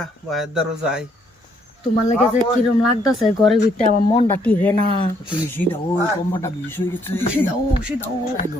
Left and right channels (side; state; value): both; normal; correlation 0.69